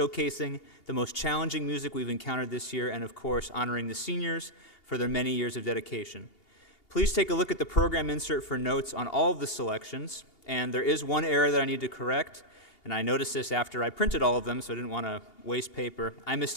the most challenging music we've encountered this year, and of course, honoring the seniors for their many years of dedication. Please take a look at the program insert for notes on all of the selections, and there is one error that I need to correct, and I noticed this after I printed all of them, so I didn't want to waste paper. I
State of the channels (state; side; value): late; right; 2.8 ms